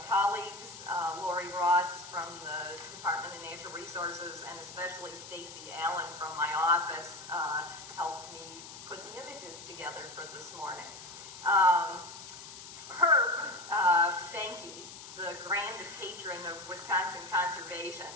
colleagues, Lori Ross from the Department of Natural Resources, and especially Stacy Allen from my office helped me put the images together for this morning. Herb Behnke, the grand patron of Wisconsin conservation,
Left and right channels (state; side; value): noise; left; hiss, 13 dB below the sound